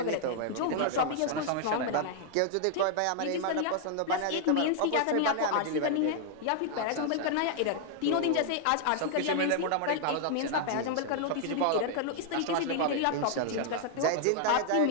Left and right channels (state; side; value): different; both; correlation 0.00